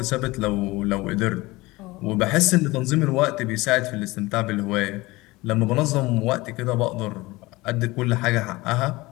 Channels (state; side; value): quieter; right; 21.1 dB